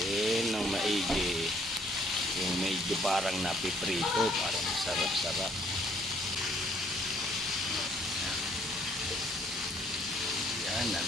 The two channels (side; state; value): both; normal; correlation 0.63